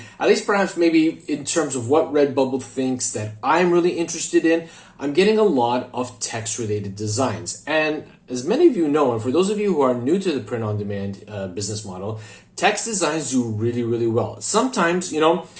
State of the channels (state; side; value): identical; both; correlation 1.00